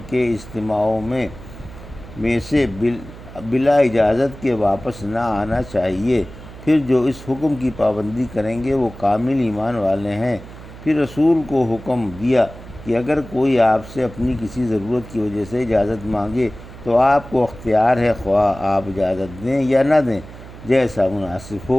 کے اجتماعوں میں سے بلا اجازت کے واپس نہ آنا چاہیے۔ پھر جو اس حکم کی پابندی کریں گے وہ کامل ایمان والے ہیں۔ پھر رسول کو حکم دیا کہ اگر کوئی آپ سے اپنی کسی ضرورت کی وجہ سے اجازت مانگے تو آپ کو اختیار ہے، خواہ آپ اجازت دیں یا نہ دیں، جیسا مناسب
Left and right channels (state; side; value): noise; right; hum, 16 dB below the sound